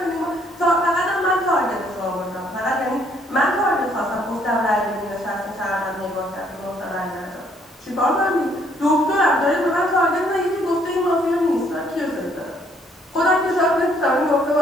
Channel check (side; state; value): both; normal; correlation 0.66